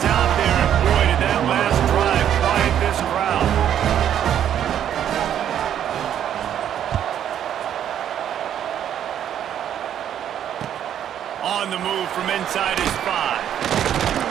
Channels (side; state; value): left; quieter; 10.0 dB